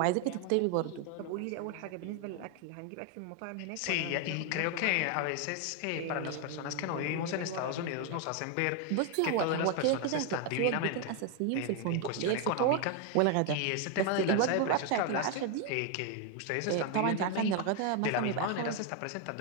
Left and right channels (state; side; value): different; both; correlation 0.01